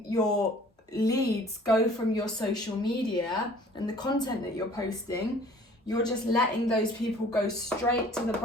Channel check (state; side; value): normal; both; correlation 0.52